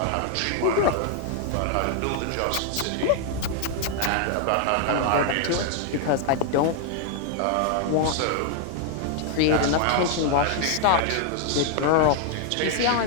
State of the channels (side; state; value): both; different; correlation 0.00